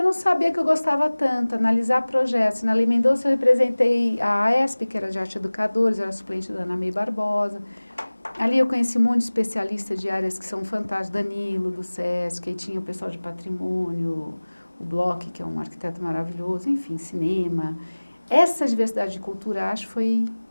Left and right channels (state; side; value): inverted; both; correlation -1.00